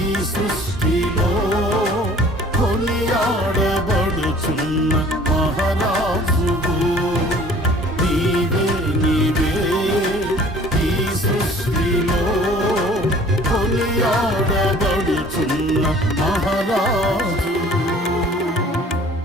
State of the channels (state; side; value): normal; both; correlation 0.51